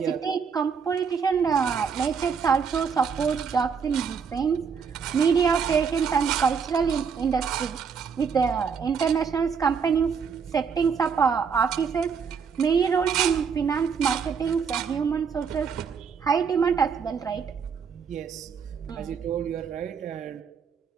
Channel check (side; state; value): left; quieter; 6.2 dB